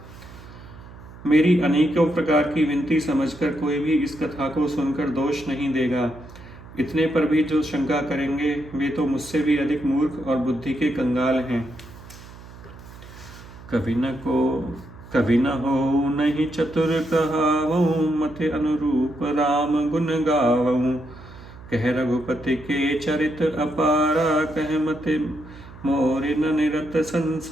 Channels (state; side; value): noise; right; hum, 18 dB below the sound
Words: मेरी अनेकों प्रकार की विनती समझकर कोई भी इस कथा को सुनकर दोष नहीं देगा। इतने पर भी जो शंका करेंगे वे तो मुझसे भी अधिक मूर्ख और बुद्धि के कंगाल हैं। कवि न हो नहीं चतुर कहावऊँ, मति अनुरूप राम गुण गावऊँ। कह रघुपति के चरित अपारा, कह मति मोरि न निरत